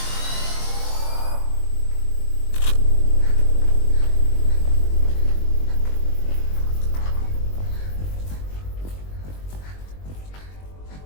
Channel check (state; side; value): late; right; 21 ms